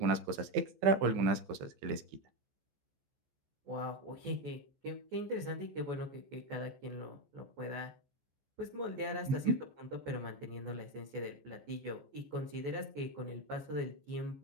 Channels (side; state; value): left; late; 14 ms